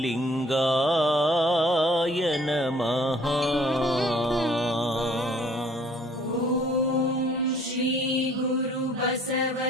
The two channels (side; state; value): both; normal; correlation 0.58